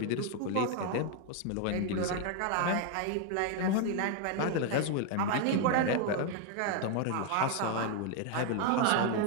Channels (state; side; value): different; both; correlation 0.01